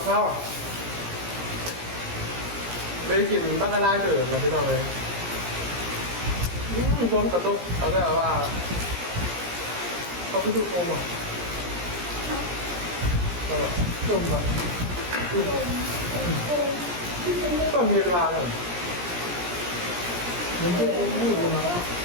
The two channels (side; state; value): left; late; 17 ms